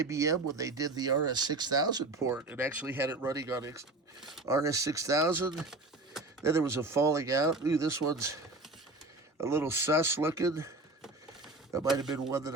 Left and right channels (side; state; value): left; quieter; 3.1 dB